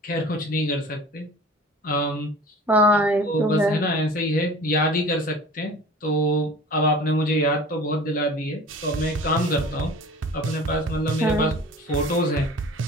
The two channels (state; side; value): normal; both; correlation 0.42